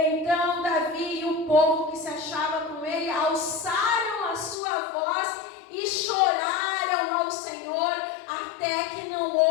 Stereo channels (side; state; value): right; drops out; at 4.5 s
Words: Davi e o povo que se achava com ele alçaram a sua voz e choraram ao Senhor, até que não